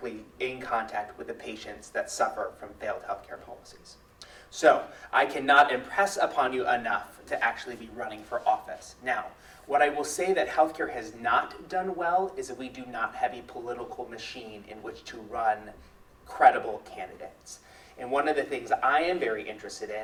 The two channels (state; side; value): identical; both; correlation 1.00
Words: in contact with the patients that suffer from failed healthcare policies. So I cannot impress upon you enough to actually be running for office. Now, what I will say that healthcare has not done well is that we do not have a political machine in which to run credible candidates. And one of the things I am very interested